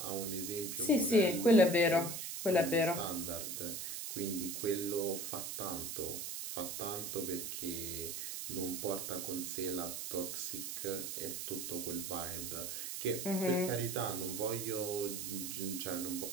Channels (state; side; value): noise; right; hiss, 5 dB below the sound